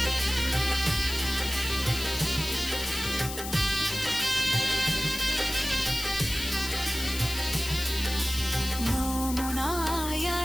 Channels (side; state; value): left; noise; hiss, 8 dB below the sound